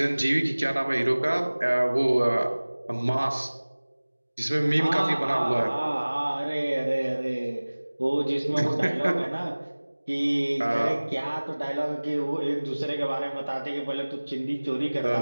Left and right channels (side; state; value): both; inverted; correlation -1.00